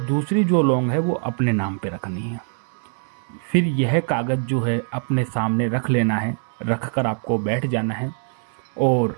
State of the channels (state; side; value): silent; left; digital silence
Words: जो लौंग है वो अपने नाम पे रखनी है। फिर यह कागज़ जो है अपने सामने रख लेना है। रख कर आपको बैठ जाना है और